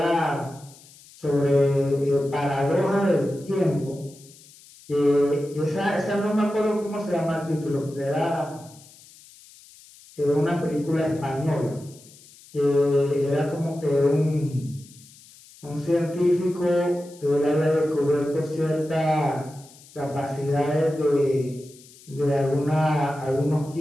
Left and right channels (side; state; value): left; noise; hiss, 23 dB below the sound